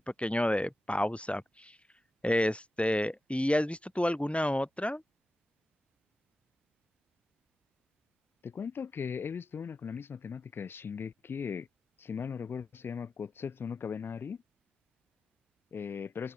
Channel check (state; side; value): normal; both; correlation 0.93